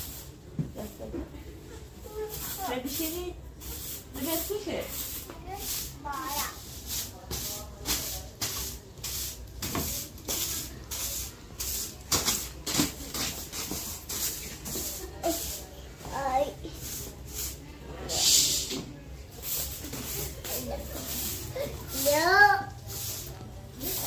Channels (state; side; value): identical; both; correlation 1.00